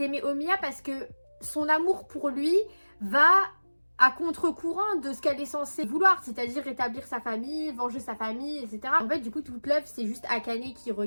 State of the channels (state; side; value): inverted; both; correlation -1.00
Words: Omiya parce que son amour pour lui va à contre-courant de ce qu'elle est censée vouloir, c'est-à-dire rétablir sa famille, venger sa famille, etc. En fait, du coup, toute l'œuvre, c'est juste Akane qui